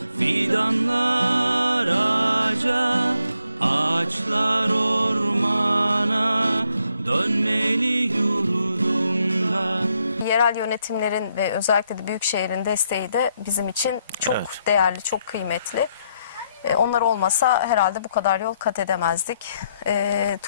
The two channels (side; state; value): both; inverted; correlation -0.76